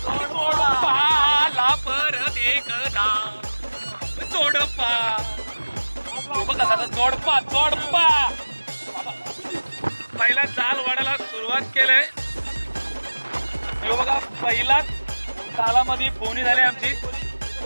परत एकदा जोडपा. बघा जोडपा जोडपा. पहिला जाल वाढायला सुरुवात केलंय. बघा पहिलाच जालामध्ये बोनी झाली आमची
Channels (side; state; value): both; inverted; correlation -1.00